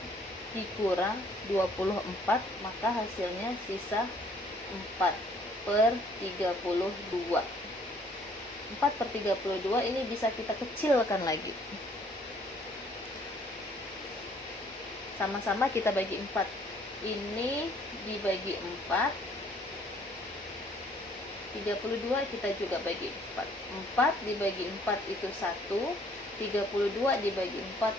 dikurang 24, maka hasilnya sisa 4/32. 4/32 ini bisa kita kecilkan lagi. Sama-sama kita bagi 4. Ini dibagi 4. 32 kita juga bagi 4. 4 dibagi 4 itu 1. 32 dibagi 4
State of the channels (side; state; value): both; normal; correlation 0.61